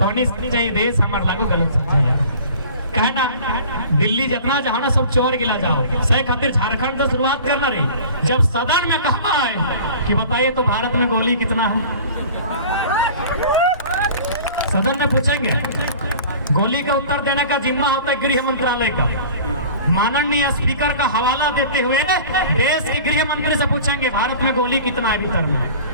नहीं चाहिए देश हमारे लागू गलत सच्चा यार। कहना दिल्ली जितना जाओ ना सब चोर गिला जाओ, सही खातिर झारखंड तो शुरुआत करना रही। जब सदन में कहा है कि बताइए तो भारत में गोली कितना है, सदन में पूछेंगे, गोली का उत्तर देने का जिम्मा होता है गृह मंत्रालय का। माननीय स्पीकर का हवाला देते हुए देश के गृह मंत्री से पूछेंगे भारत में गोली कितना है भीतर में,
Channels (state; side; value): inverted; both; correlation -0.42